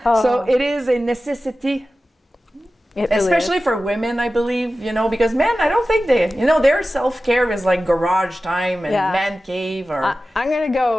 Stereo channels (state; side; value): normal; both; correlation 0.95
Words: So it is a necessity, It really especially is. for women, I believe, you know, because men, I don't think their self-care is like garage time and Yeah. man cave or... I'm going to